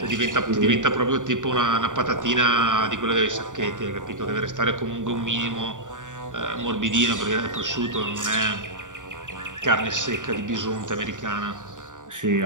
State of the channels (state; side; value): late; left; 0.87 ms